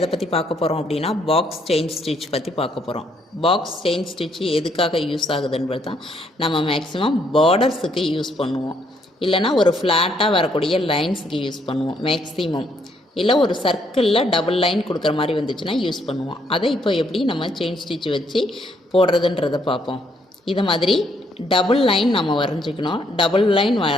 பத்தி பார்க்க போறோம் அப்படினா பாக்ஸ் செயின் ஸ்டிட்ச் பத்தி பார்க்க போறோம். பாக்ஸ் செயின் ஸ்டிட்ச் எதுக்காக யூஸ் ஆகுதுன்றது தான் நம்ம மேக்ஸिमम பார்டர்ஸ்க்கு யூஸ் பண்ணுவோம். இல்லனா ஒரு ஃப்ளாட்டா வரக்கூடிய லைன்ஸ்க்கு யூஸ் பண்ணுவோம் மேக்ஸिमम. இல்ல ஒரு சர்க்கிள்ல டபுள் லைன் கொடுக்கிற மாதிரி வந்துச்சுனா யூஸ் பண்ணுவோம். அதை இப்போ எப்படி நம்ம செயின் ஸ்டிட்ச் வச்சு போடுறதுன்றதை பார்ப்போம். இத மாதிரி டபுள் லைன் நம்ம வரைஞ்சிக்கணும். டபுள் லைன்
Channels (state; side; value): normal; both; correlation 0.71